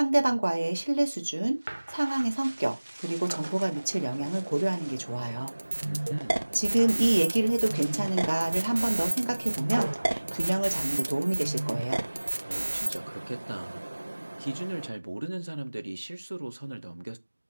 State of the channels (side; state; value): both; inverted; correlation -1.00